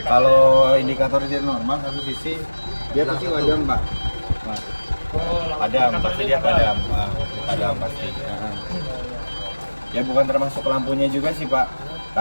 Kalau indikator dia normal satu sisi, dia pasti padam Pak. Nah, padam, pasti dia padam. Padam pasti. Ya bukan termasuk lampunya juga sih Pak.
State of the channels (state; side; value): inverted; both; correlation -1.00